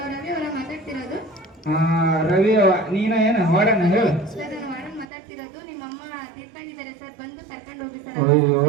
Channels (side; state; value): left; drops out; at 5.1 s